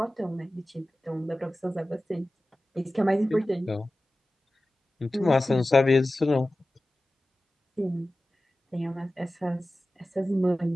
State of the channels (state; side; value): normal; both; correlation 0.96